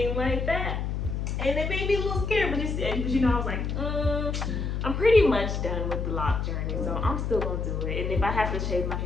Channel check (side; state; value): left; noise; hum, 2 dB below the sound